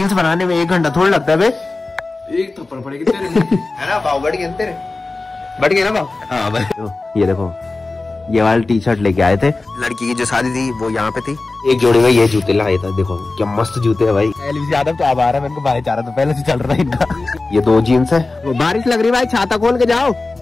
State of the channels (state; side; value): quieter; right; 3.4 dB